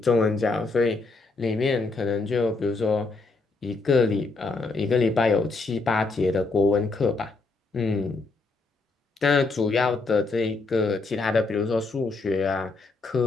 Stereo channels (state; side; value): quieter; right; 3.7 dB